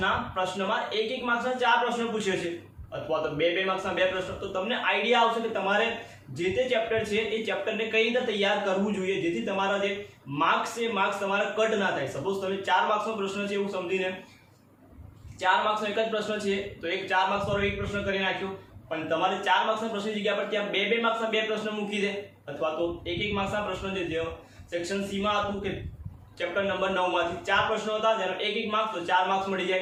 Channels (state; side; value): identical; both; correlation 1.00